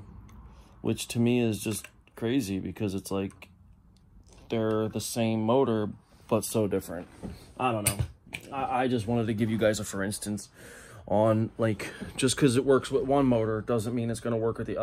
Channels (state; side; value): identical; both; correlation 1.00